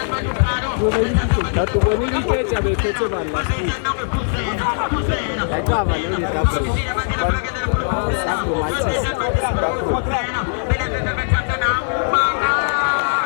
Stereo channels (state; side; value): silent; right; 66 dB below the other